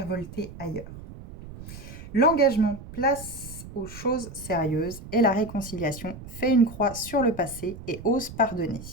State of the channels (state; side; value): noise; right; rumble, 14 dB below the sound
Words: ailleurs. L'engagement place aux choses sérieuses et la réconciliation fait une croix sur le passé et ose pardonner.